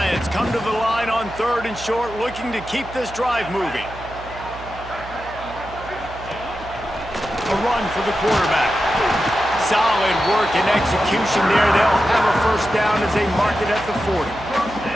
come to the line on third and short, looking to keep this drive moving. A run for the quarterback. Solid work and execution there. They'll have a first down as they mark it at the 40.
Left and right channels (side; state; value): right; noise; hum, 15 dB below the sound